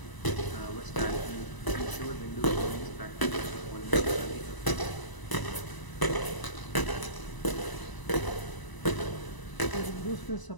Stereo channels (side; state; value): right; late; 1.0 ms